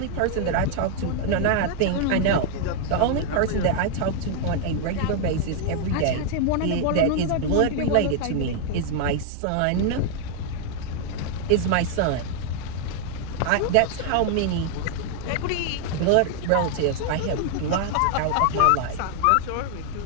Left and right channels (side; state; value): both; different; correlation 0.00